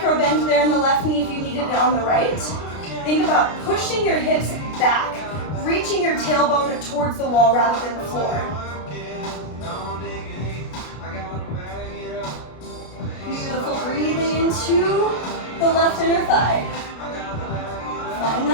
bend there in the left knee if you needed it on the right. Think about pushing your hips back, reaching your tailbone towards the wall rather than the floor. Beautiful, breathing into the left inner thigh. Find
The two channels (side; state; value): right; late; 33 ms